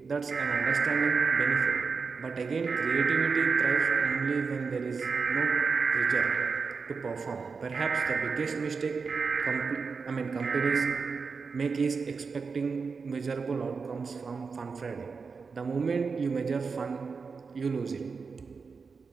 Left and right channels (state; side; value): quieter; left; 5.0 dB